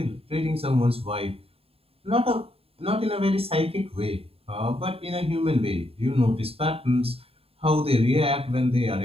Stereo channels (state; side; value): late; left; 0.28 ms